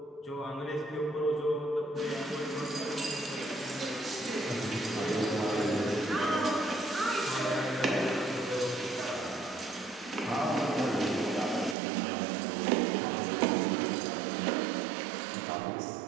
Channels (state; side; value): drops out; left; at 11.8 s